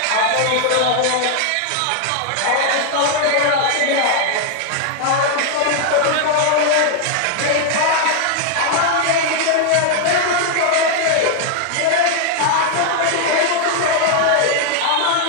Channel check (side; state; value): both; different; correlation 0.00